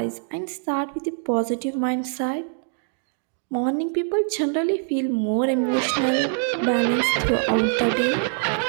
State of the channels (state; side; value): silent; left; digital silence